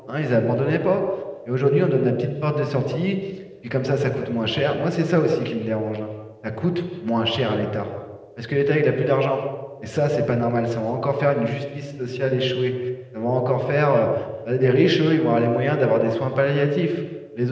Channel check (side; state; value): both; identical; correlation 1.00